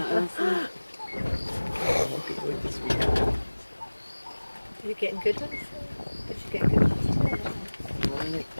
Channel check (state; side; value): inverted; both; correlation -1.00